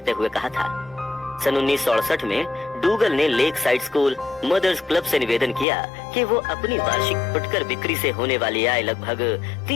हुए कहा था, सन 1968 में डूगल ने lakeside school mothers club से निवेदन किया कि वो अपनी वार्षिक फुटकर बिक्री से होने वाली आय लगभग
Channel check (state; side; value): drops out; right; at 5.7 s